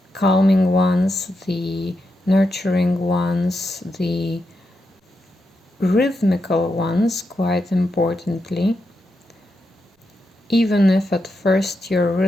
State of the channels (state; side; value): normal; both; correlation 0.85